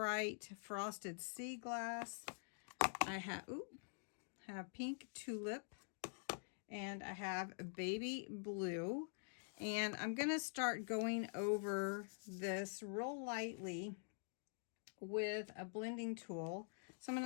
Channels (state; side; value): silent; right; digital silence